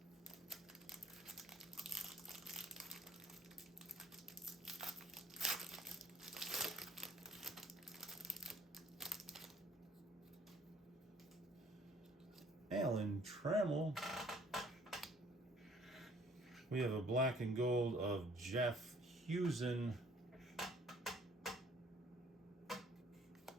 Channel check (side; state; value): both; normal; correlation 0.58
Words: Alan Trammell. We have a black and gold of Jeff Husen.